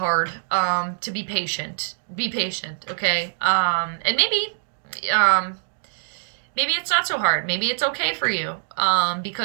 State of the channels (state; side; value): silent; left; digital silence